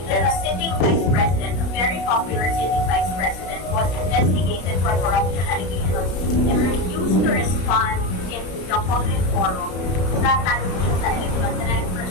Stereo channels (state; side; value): late; right; 33 ms